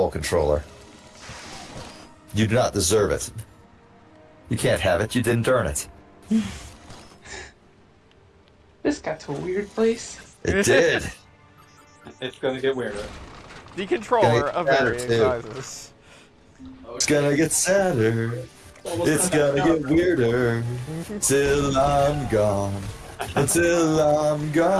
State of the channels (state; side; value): identical; both; correlation 1.00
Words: controller. You do not deserve it. You can't have it. You didn't earn it. This got to a weird place. It did. It's going to get weirder. The controller of varying too. sizes. It's gonna get sadder. It's gonna get weirder. Till I'm gone. Until I'm